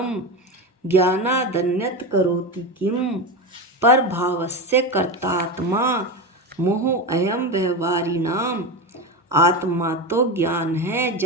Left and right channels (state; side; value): normal; both; correlation 0.18